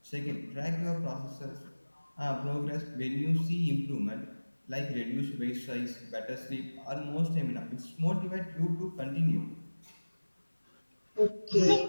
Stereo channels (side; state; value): both; inverted; correlation -1.00